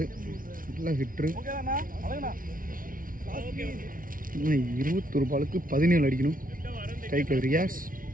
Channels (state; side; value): late; left; 0.40 ms